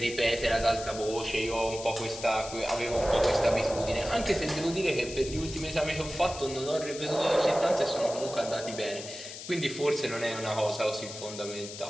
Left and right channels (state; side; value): noise; left; hiss, 11 dB below the sound